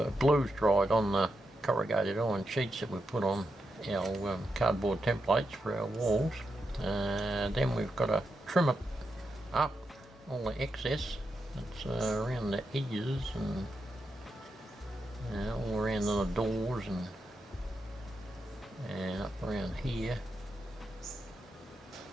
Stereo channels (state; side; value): normal; both; correlation 0.86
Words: glue's dried on the corrugated iron sheets that we put on our cardboard templates for our walls, then we've got to trim it up, all the excess that's around the edges and all around the doors and up around here.